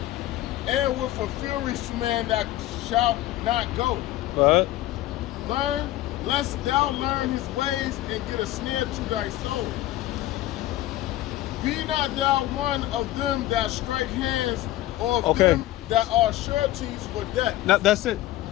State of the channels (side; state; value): right; quieter; 15.3 dB